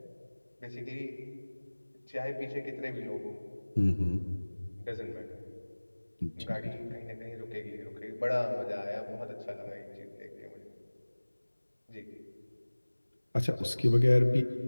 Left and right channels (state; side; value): inverted; both; correlation -1.00